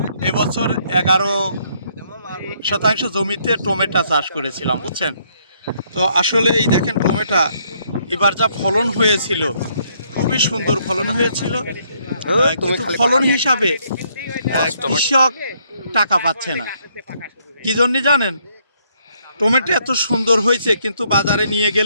এবছর 11% জমিতে টমেটো চাষ করেছিলাম, বুঝছেন তো। আসলে এই দেখেন টমেটো এবার যা ফলন হয়েছিল, খুবই সুন্দর ফলন হয়েছিল, কিন্তু ফলন হিসাবে কৃষক টাকা পাচ্ছে না। কি জন্য জানেন? টমেটো এত সুন্দর হয়েছে, কিন্তু বাজারে নিয়ে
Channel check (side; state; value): both; inverted; correlation -0.70